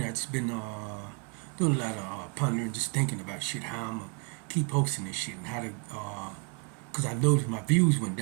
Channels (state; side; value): quieter; left; 34.2 dB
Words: I've just been doing a lot of pondering, just thinking about shit, how I'm gonna keep posting this shit and how to, cause I noticed my views went